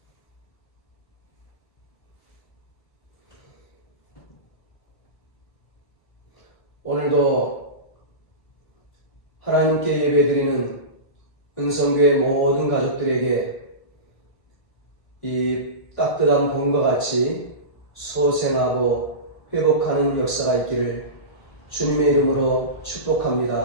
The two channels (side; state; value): right; late; 1.7 ms